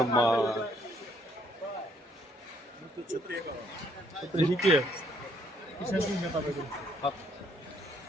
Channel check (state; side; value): normal; both; correlation 0.68